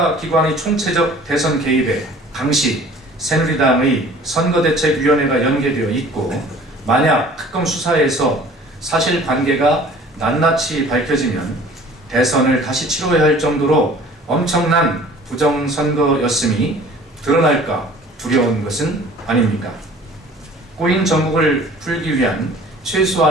총체적 대선 개입에 당시 새누리당의 선거대책위원회가 연계되어 있고 만약 특검 수사에서 사실관계가 낱낱이 밝혀지면 대선을 다시 치러야 할 정도로 엄청난 부정선거였음이 드러날까 두려운 것은 아닙니까? 꼬인 전국을 풀기 위한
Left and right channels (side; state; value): both; normal; correlation 0.49